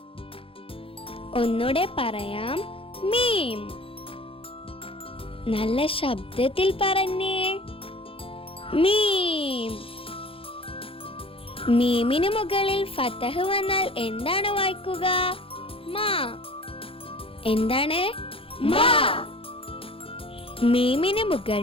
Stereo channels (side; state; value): right; late; 0.27 ms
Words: ഒന്നുകൂടെ പറയാം, മീം. നല്ല ശബ്ദത്തിൽ പറഞ്ഞേ, മീം. മീമിന് മുകളിൽ ഫതഹ് വന്നാൽ എന്താണ് വായിക്കുക? മാ. എന്താണ്? മാ. മീമിന്